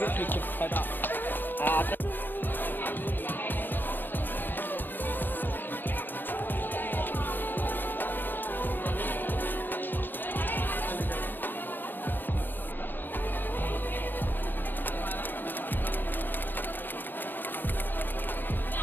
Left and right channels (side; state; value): right; late; 0.092 ms